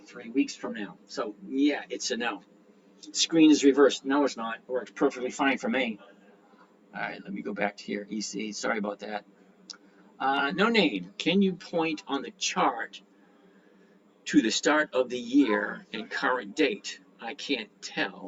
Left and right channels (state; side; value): identical; both; correlation 1.00